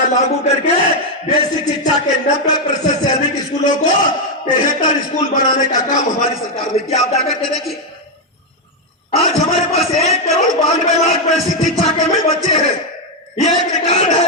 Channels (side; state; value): both; normal; correlation 0.03